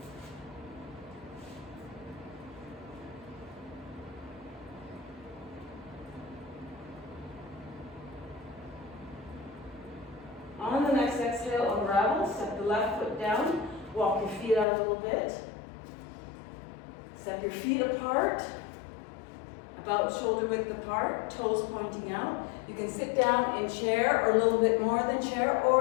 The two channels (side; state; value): right; drops out; at 14.7 s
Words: On the next exhale, unravel. Step the left foot down. Walk your feet out a little bit. Step your feet apart, about shoulder width apart, toes pointing out. You can sit down in chair or a little bit more than chair